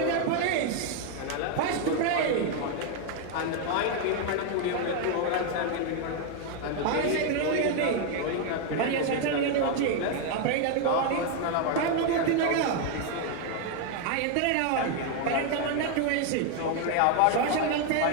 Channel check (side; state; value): both; different; correlation 0.01